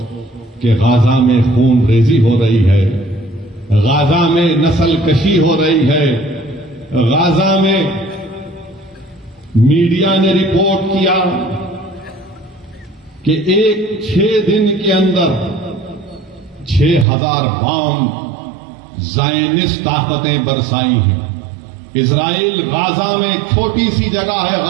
کہ غازہ میں خون ریزی ہو رہی ہے، غازہ میں نسل کشی ہو رہی ہے، غازہ میں میڈیا نے رپورٹ کیا کہ 6 دن کے اندر 6000 بام زائنسٹ طاقتیں برسائی ہیں۔ اسرائیل غازہ میں ایک چھوٹی سی جگہ ہے،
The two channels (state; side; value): drops out; left; at 17.1 s